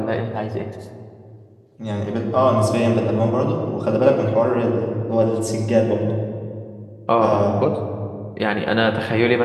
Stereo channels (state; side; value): identical; both; correlation 1.00